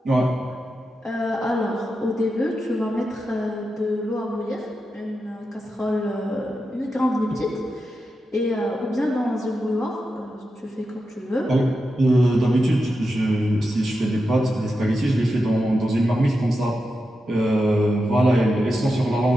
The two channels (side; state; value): both; normal; correlation 0.89